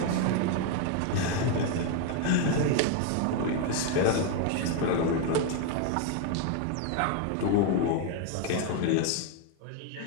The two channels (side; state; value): both; different; correlation 0.01